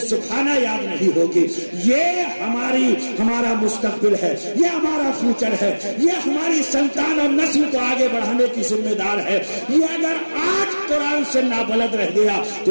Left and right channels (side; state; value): both; inverted; correlation -1.00